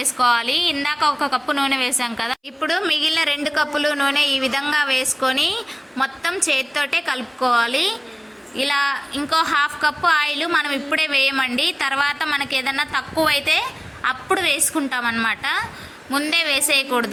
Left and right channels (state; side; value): identical; both; correlation 1.00